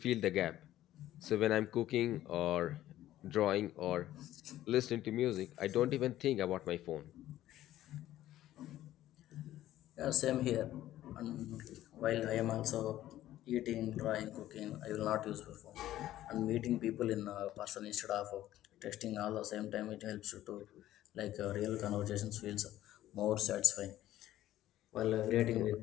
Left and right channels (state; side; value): quieter; right; 13.8 dB